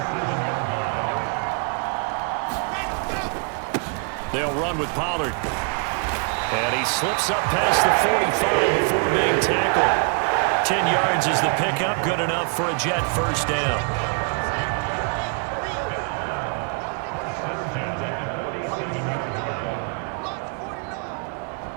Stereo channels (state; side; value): quieter; left; 38.2 dB